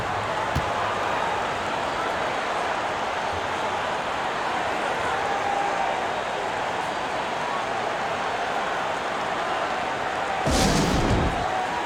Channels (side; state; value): both; identical; correlation 1.00